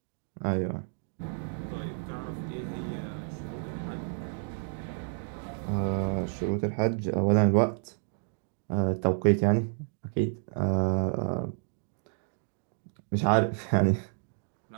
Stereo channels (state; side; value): silent; left; 58 dB below the other